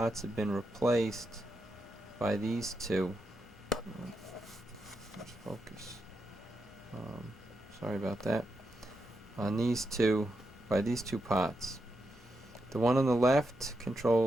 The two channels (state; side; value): normal; both; correlation 0.85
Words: have been replaced by these two. Let's focus. Sorry about that. On these two, by these two pots. The one on the left